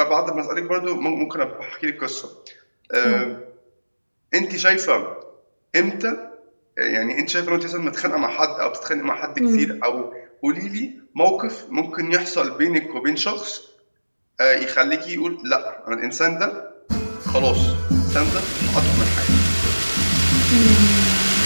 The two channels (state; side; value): inverted; both; correlation -1.00